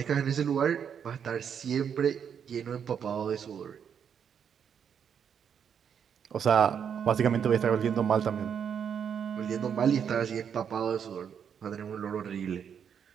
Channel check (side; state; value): left; quieter; 7.8 dB